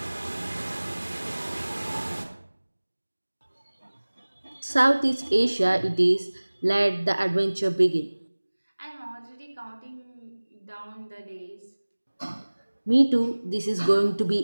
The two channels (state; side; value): inverted; both; correlation -1.00